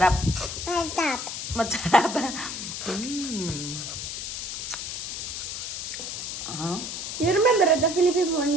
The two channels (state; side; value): noise; left; hiss, 5 dB below the sound